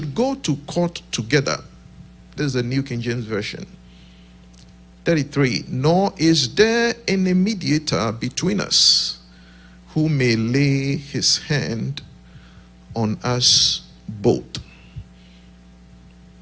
go to court together. This is the New King James Version. 33, nor is there any mediator between us who may lay his hand on us both.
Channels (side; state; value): both; identical; correlation 1.00